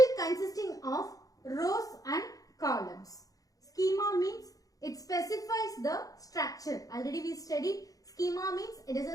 consisting of rows and columns. Schema means it specifies the structure. Already we studied schema means it is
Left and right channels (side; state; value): right; late; 0.17 ms